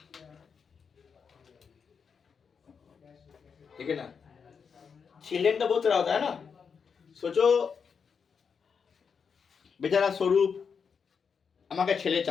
ठीक है ना, चिल्ड्रन तो बहुत तरह होता है ना, सोचो बेचारा स्वरूप আমাকে ছেলে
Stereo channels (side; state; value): right; quieter; 6.2 dB